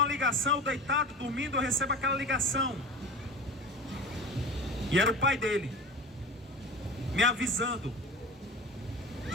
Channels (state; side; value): normal; both; correlation 0.34